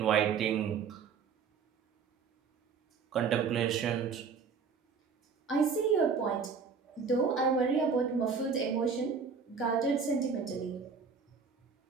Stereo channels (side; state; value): left; quieter; 5.7 dB